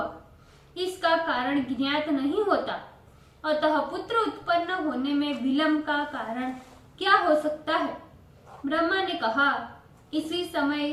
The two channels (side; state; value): both; identical; correlation 1.00